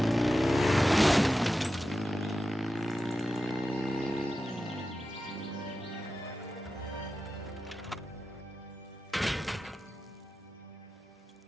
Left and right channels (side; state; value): both; normal; correlation 0.92